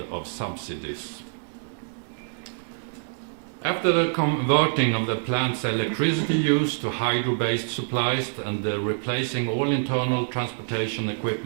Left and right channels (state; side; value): silent; left; digital silence